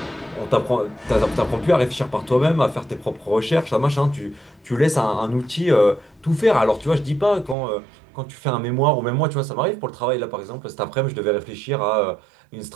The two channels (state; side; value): drops out; left; at 7.6 s